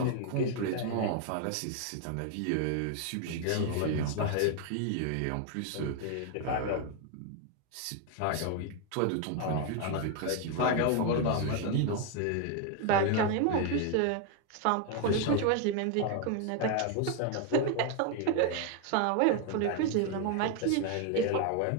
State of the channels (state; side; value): different; both; correlation 0.01